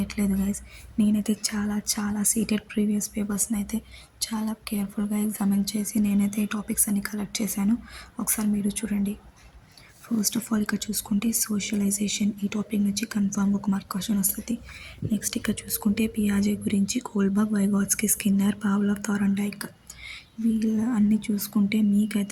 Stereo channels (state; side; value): identical; both; correlation 1.00